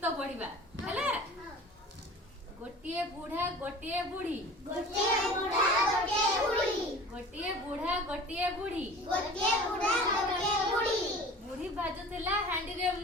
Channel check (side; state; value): both; normal; correlation 0.41